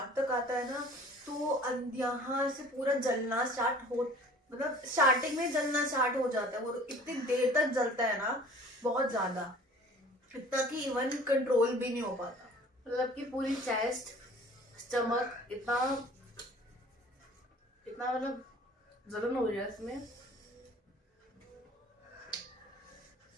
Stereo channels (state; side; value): normal; both; correlation 0.48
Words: तक आता है ना तो यहाँ से पूरा जलना स्टार्ट हो, मतलब स्टार्टिंग में जलना स्टार्ट हो जाता है। वो इतनी देर तक जलता है ना, बहुत ज्यादा, इतना कि इवन कंट्रोल भी नहीं हो पाता। मतलब कि पूरी चेस्ट, स्टमक इतना मतलब जलन हो रही है इसमें।